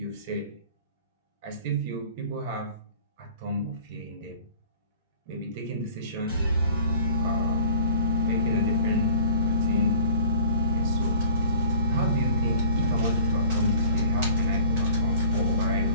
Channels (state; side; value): inverted; both; correlation -0.46